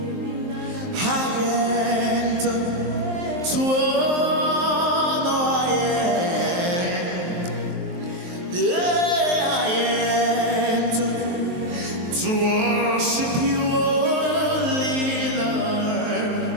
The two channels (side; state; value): left; late; 23 ms